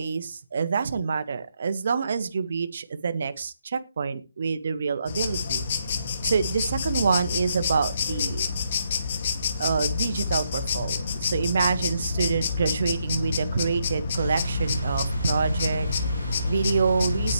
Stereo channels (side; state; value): both; inverted; correlation -0.78